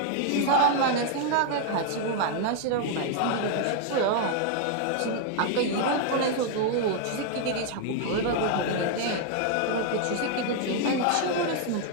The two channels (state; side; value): different; both; correlation 0.00